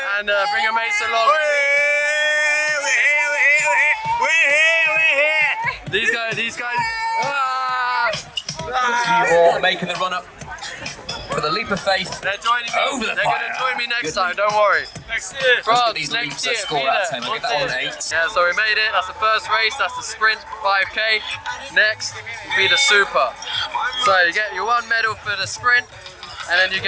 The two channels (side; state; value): both; identical; correlation 1.00